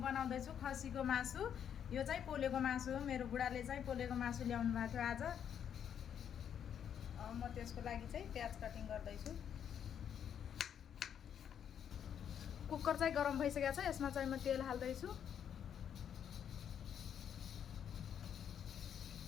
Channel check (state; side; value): quieter; right; 8.7 dB